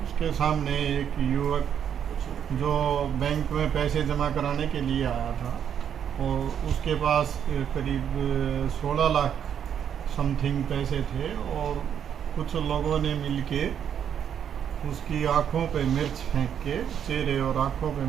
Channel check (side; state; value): left; quieter; 8.7 dB